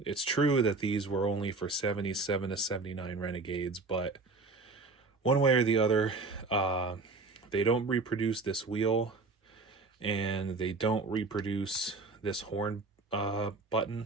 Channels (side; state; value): left; quieter; 3.8 dB